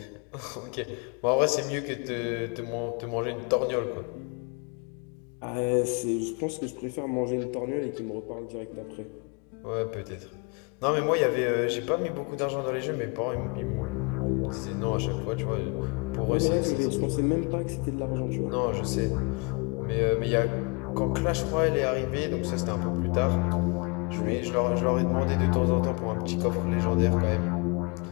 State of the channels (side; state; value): right; quieter; 31.3 dB